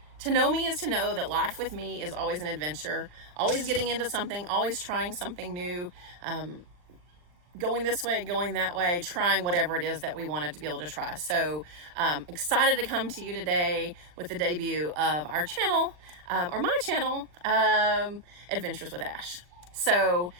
to know me is to know that life with me is always an adventure, always getting into something, always trying something new, going this way, going that way, trying whatever it is that we wanted to be able to try. So excited to come to you today with the debut of our channel, or my channel, Adventures with Ash. So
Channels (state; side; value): late; left; 40 ms